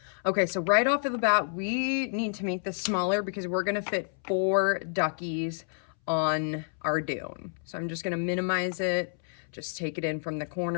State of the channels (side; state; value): right; silent; 58 dB below the other